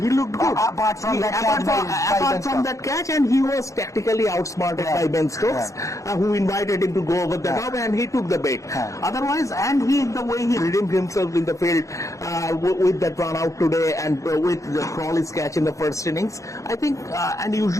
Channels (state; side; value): late; right; 0.15 ms